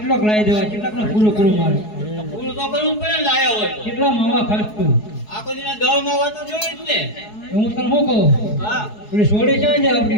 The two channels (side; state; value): right; late; 4.7 ms